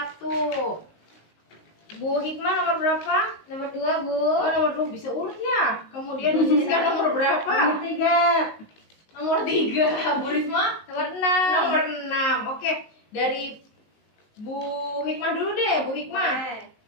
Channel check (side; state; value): right; late; 19 ms